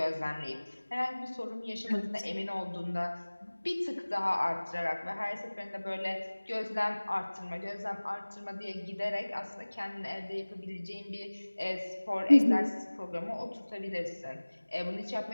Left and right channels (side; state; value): both; inverted; correlation -1.00